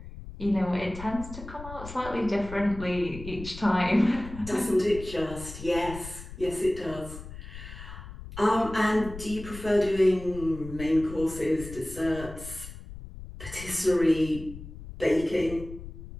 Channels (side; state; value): left; noise; rumble, 12 dB below the sound